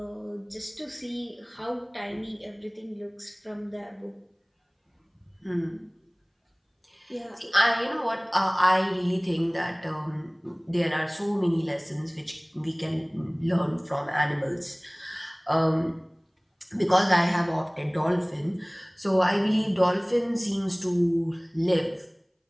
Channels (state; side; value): identical; both; correlation 1.00